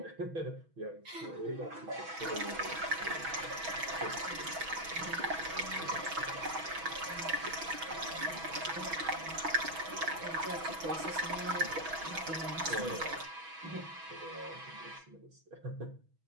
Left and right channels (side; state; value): left; late; 6.2 ms